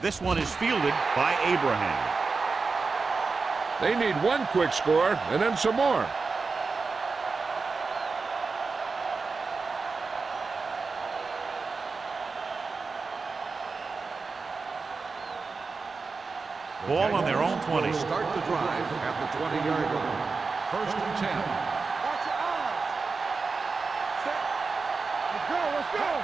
This one is fielded by Abraham. They need one quick score and then some more. Ball on their own 20. Start the drive at the 20-yard line. 1st and 10. Watch your eyes. Set. Let's go.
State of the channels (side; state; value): left; quieter; 4.4 dB